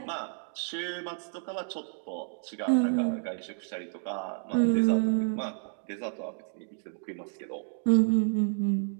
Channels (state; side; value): silent; left; digital silence